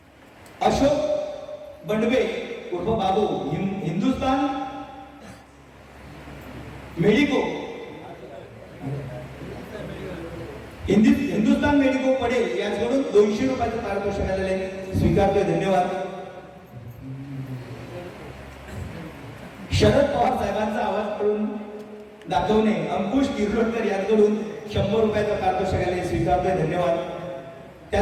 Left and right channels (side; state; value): both; identical; correlation 1.00